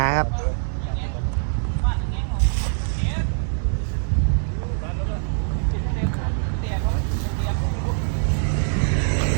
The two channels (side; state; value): left; silent; 63 dB below the other